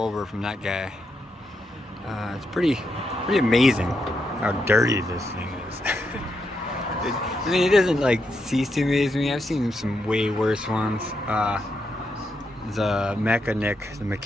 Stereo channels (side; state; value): both; normal; correlation 0.82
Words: from that guy. It's pretty amazing how dirty this thing is. I mean, it doesn't like cease to amaze me. I've seen some way worse ones. The mechanic,